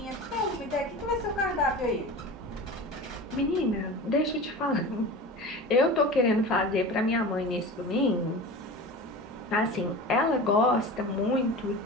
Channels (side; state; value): both; normal; correlation 0.32